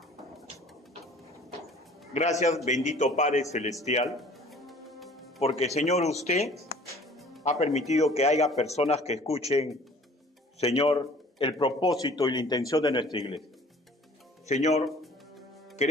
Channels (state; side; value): normal; both; correlation 0.50